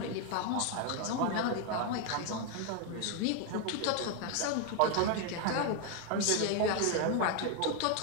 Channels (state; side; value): different; both; correlation 0.01